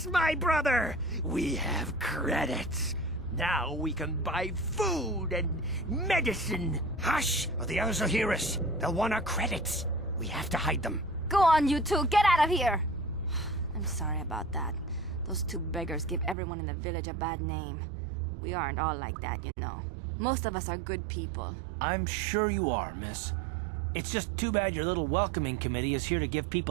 my brother! We have credits. Now we can buy food and medicine. Hush, or the others will hear us. They'll want our credits. We have to hide them. Go on, you two. Get out of here. I'm sorry about that. Those 2 beggars give everyone in the village a bad name. We aren't all like that, you know. Most of us are good people. I'm sure you are, miss. It's just too bad your little welcoming committee is here to give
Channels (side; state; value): left; drops out; at 16.4 s